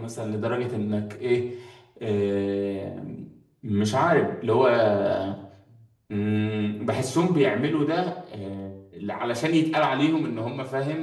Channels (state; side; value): identical; both; correlation 1.00